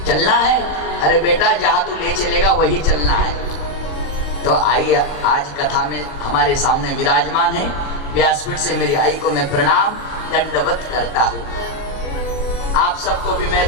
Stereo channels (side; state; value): right; late; 26 ms